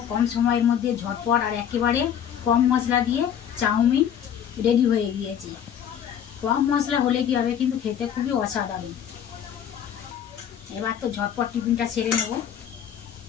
কম সময়ের মধ্যে ঝটপট আর একেবারে কম মশলা দিয়ে চাউমিন রেডি হয়ে গিয়েছে। কম মশলা হলে কি হবে, কিন্তু খেতে খুবই অসাধারণ। এবার তো ঝটপট টিফিনটা সেরে নেব।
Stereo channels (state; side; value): quieter; right; 9.0 dB